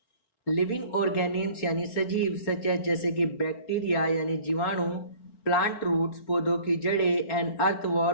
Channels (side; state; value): right; late; 4.0 ms